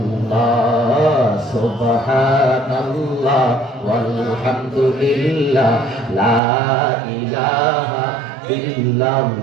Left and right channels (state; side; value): drops out; left; at 6.4 s